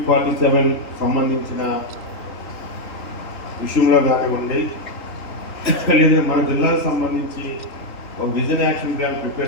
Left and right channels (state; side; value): late; right; 3.4 ms